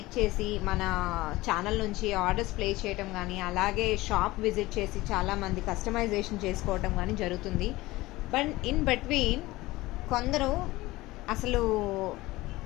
చేసి మన ఛానల్ నుంచి ఆర్డర్స్ ప్లేస్ చేయడం కానీ, అలాగే షాప్ విజిట్ చేసి చాలామంది కస్టమైజేషన్ చేసుకోవటం కానీ జరుగుతుంది. బట్ ఇన్ బిట్వీన్ కొందరు అసలు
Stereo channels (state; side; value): quieter; right; 19.2 dB